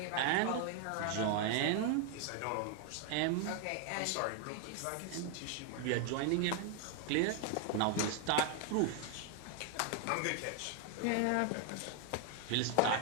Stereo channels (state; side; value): different; both; correlation 0.01